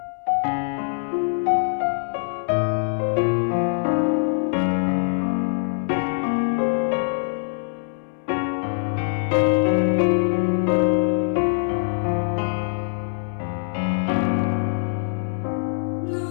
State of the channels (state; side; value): silent; right; 61 dB below the other